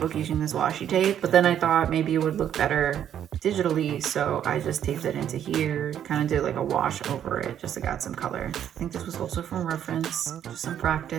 using this washi tape, but then I thought maybe it would look better digitally, so I just taped it into here, kind of did like a wash over it just to add some color. I think this was also from reference, just some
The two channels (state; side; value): quieter; left; 9.9 dB